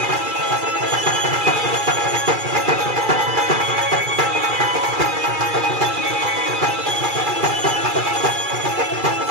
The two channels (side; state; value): left; late; 2.3 ms